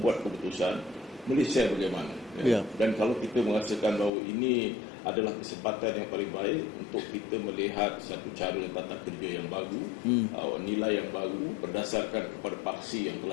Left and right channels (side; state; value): right; drops out; at 4.1 s